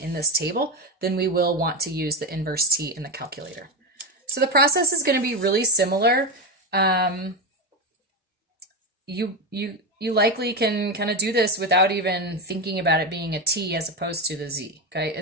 this table, then we will want to use the inverse T in the calculator. So the process is going to be really similar. You likely can kind of do this without even thinking about it being a T as opposed to the Z. Okay,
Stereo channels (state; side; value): normal; both; correlation 0.13